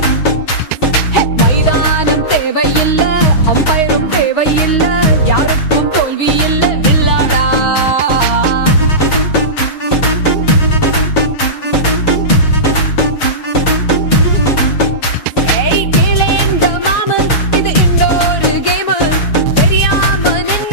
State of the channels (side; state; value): right; late; 6.3 ms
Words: மைதானம் தேவையில்ல, அம்பயரும் தேவையில்ல, யாருக்கும் தோல்வி இல்ல வில்லாடா.